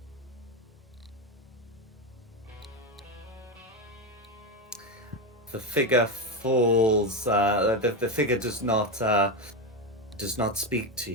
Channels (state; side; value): normal; both; correlation 0.12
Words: The figure falls. The figure does not speak to